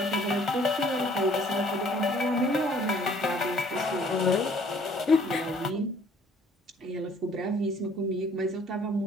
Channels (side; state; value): both; normal; correlation 0.58